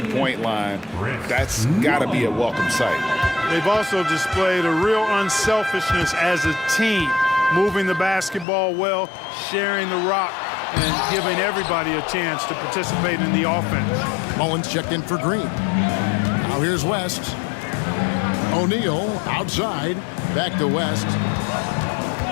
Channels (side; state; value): right; drops out; at 8.5 s